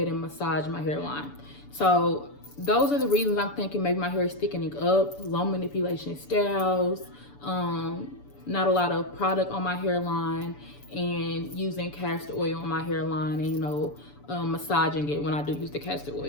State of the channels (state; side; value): late; right; 6.9 ms